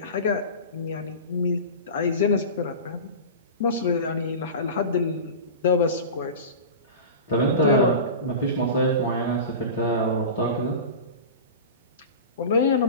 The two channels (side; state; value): both; inverted; correlation -0.31